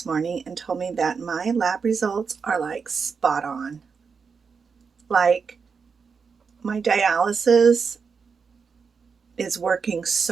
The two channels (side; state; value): left; quieter; 5.6 dB